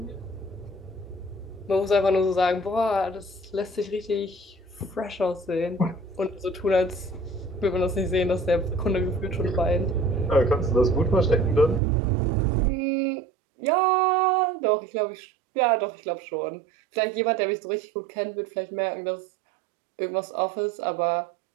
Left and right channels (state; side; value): drops out; left; at 11.8 s